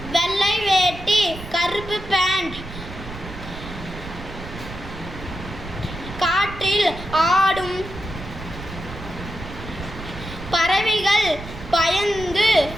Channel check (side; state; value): right; noise; rumble, 12 dB below the sound